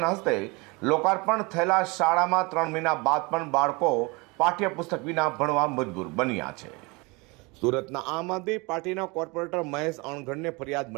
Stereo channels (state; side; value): quieter; left; 26.8 dB